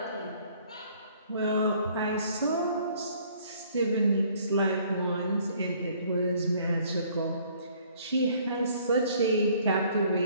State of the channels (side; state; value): both; inverted; correlation -0.60